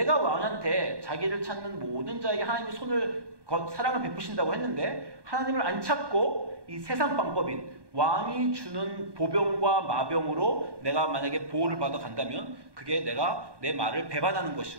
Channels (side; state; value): left; late; 1.2 ms